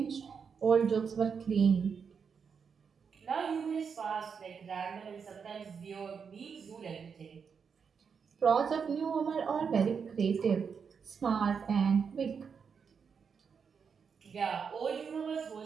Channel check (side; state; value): left; quieter; 6.3 dB